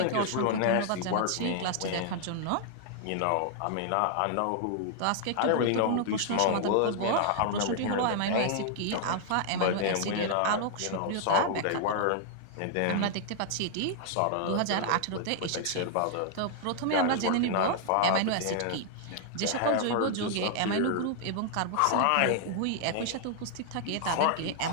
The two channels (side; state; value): both; different; correlation -0.01